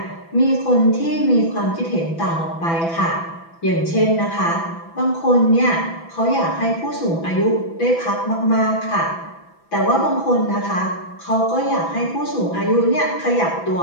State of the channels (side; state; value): right; late; 6.0 ms